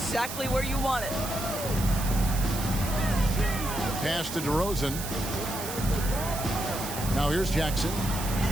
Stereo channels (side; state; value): right; noise; hiss, 8 dB below the sound